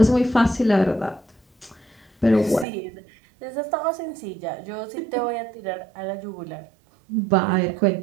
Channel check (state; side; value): drops out; left; at 2.7 s